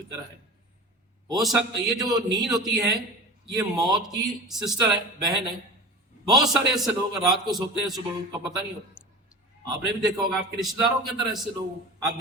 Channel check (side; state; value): both; normal; correlation 0.33